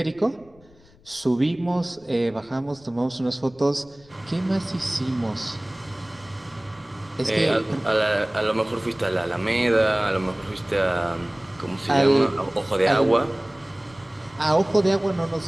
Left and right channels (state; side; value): noise; left; rumble, 27 dB below the sound